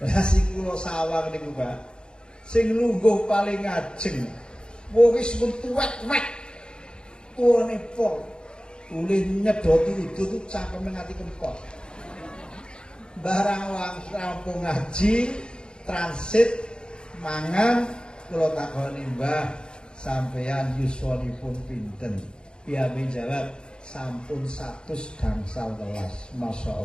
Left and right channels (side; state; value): right; late; 0.050 ms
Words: Lah sing kula sawang niku, Pak. Sing lungguh paling ngajeng. Wis mun tuwek-wek. Tuwane pol. Ulih nyedoti itu cangkeme ngati kempot. Barang wong rampung ngaji, transit mangan, kula takoni, Mbah, sampeyan yuswanipun pinten? Piyambake jawab, sampun 100 gangsal welas.